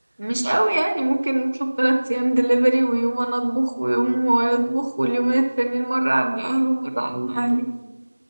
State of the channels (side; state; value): both; inverted; correlation -1.00